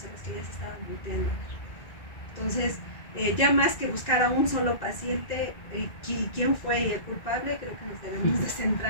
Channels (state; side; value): late; right; 1.9 ms